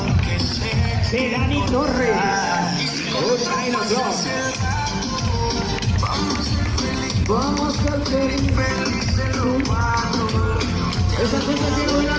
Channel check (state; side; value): identical; both; correlation 1.00